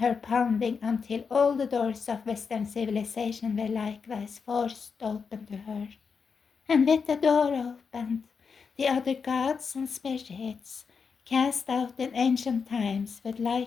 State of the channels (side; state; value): right; quieter; 5.6 dB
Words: pounding until all the doors of Western civilization were likewise forced open to her. And with the door opened, the other gods and spirits, cast out in ancient times, would